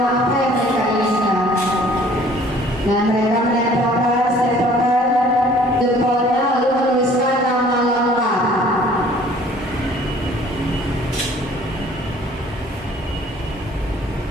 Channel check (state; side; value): normal; both; correlation 0.54